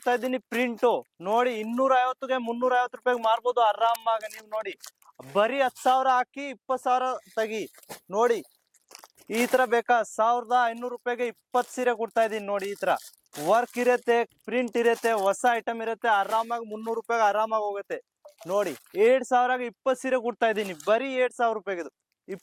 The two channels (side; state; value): both; identical; correlation 1.00